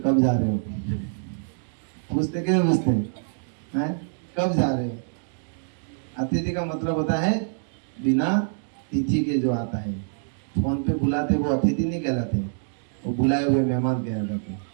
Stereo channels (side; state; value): left; silent; digital silence